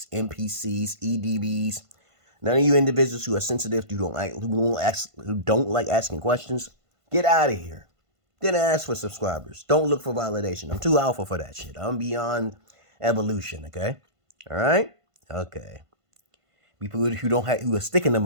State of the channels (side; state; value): left; late; 1.5 ms